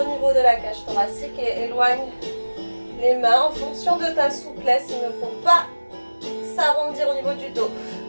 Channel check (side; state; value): both; inverted; correlation -1.00